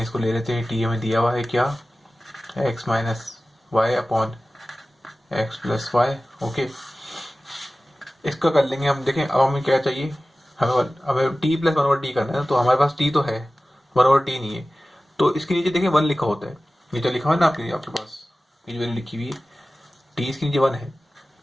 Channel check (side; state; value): both; normal; correlation 0.96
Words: इसको ले लेते हैं, t हमें दिया हुआ है क्या, x minus y upon x plus y. Okay, इसका कर लेंगे हम। देखें अब हमें क्या चाहिए, हमें t प्लस 1/t करना है, तो हमारे पास t तो है, 1/t नहीं है। तो इसके नीचे देखें 1 लिखा होता है, नीचे लिखा हुआ है ना आपके पास, ये जो वैल्यू लिखी हुई है t इसके नीचे 1 है।